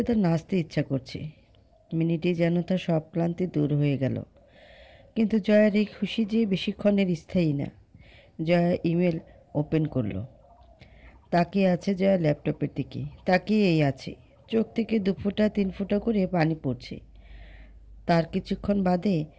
তার নাচতে ইচ্ছা করছে। মিনিটে যেন তার সব ক্লান্তি দূর হয়ে গেল। কিন্তু জয়ার এই খুশি যে বেশিক্ষণের স্থায়ী না। জয়া ইমেল ওপেন করলো। তাকিয়ে আছে জয়া ল্যাপটপের দিকে। তাকিয়েই আছে। চোখ থেকে 2 ফোঁটা 3 ফোঁটা করে পানি পড়ছে। তার কিছুক্ষণ বাদে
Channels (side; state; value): both; identical; correlation 1.00